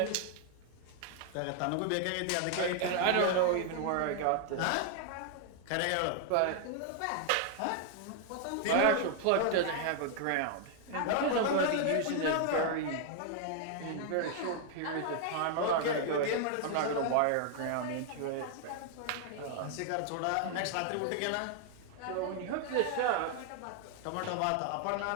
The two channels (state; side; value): different; both; correlation 0.00